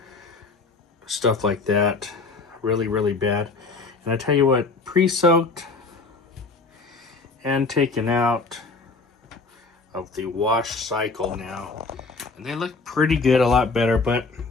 stuff like that. Really bad. And I tell you what, pre-soaked and taken out of the wash cycle now, and they look pretty good, a lot better, but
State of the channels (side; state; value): right; quieter; 4.0 dB